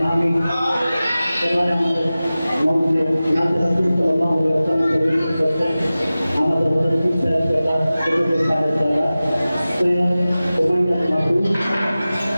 আমি এবার আমাদের মধ্যে নাতে রাসূল সাল্লাল্লাহু আলাইহি ওয়াসাল্লাম প্রবেশ করতেন আমাদের হযরত ঈসা আলাইহিস সালাম দ্বারা সৈয়দ উমাইয়া মাহমুদ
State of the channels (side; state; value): both; inverted; correlation -0.96